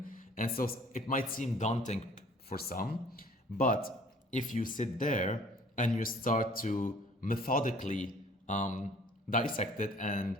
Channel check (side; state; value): both; normal; correlation 0.54